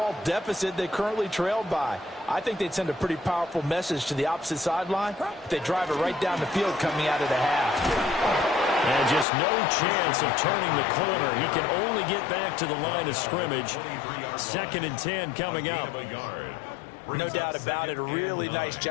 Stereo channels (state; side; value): drops out; right; at 9.2 s